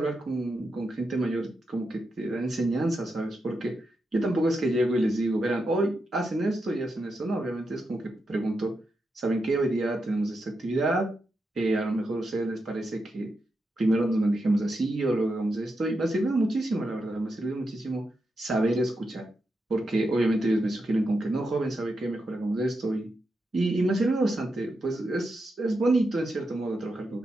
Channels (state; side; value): normal; both; correlation 0.86